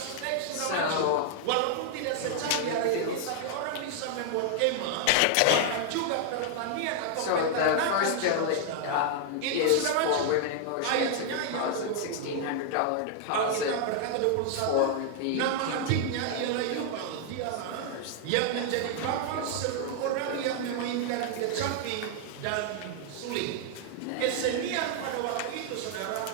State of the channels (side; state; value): both; different; correlation 0.00